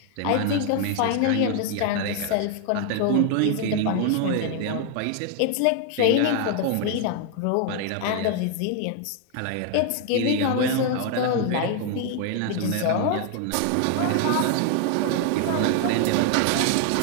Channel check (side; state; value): both; different; correlation 0.00